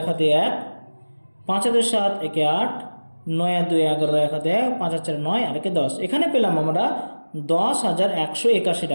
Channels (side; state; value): both; inverted; correlation -1.00